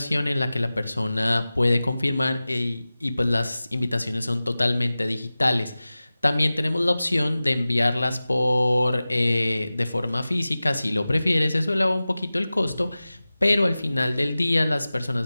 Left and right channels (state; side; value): inverted; both; correlation -0.96